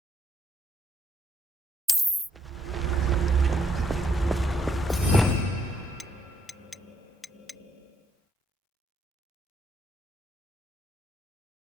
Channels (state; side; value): normal; both; correlation 0.72